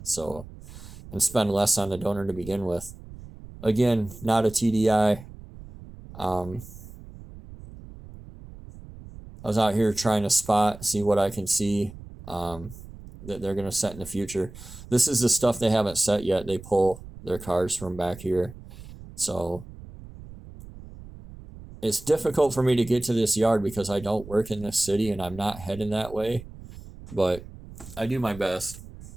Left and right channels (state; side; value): noise; right; rumble, 16 dB below the sound